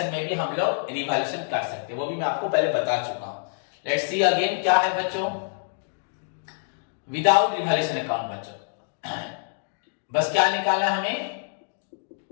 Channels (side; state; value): right; silent; digital silence